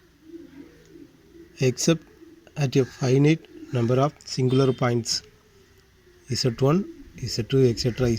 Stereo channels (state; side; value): identical; both; correlation 1.00